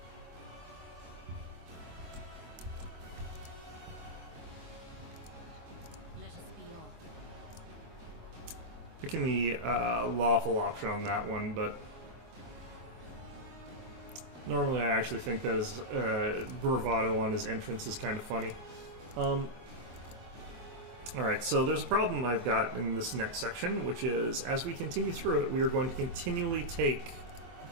Let us be off. Picking the lawful option on that one, but normally I actually think that his bravado on his entrance is kind of funny. Alright, so there's a problem I've got in this next section, which is as we continue through it, we are going to continually take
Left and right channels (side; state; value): left; late; 24 ms